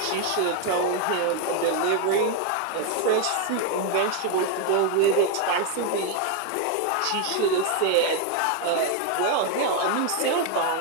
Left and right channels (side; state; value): both; different; correlation 0.01